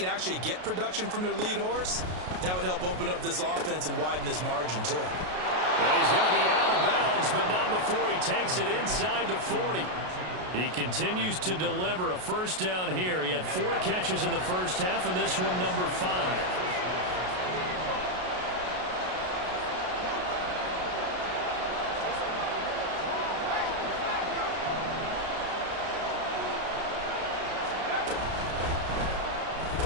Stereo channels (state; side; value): late; left; 33 ms